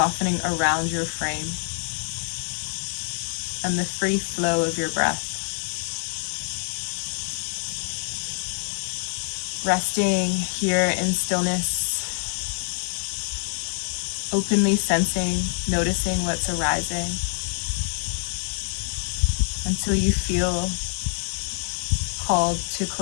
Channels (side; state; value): right; silent; digital silence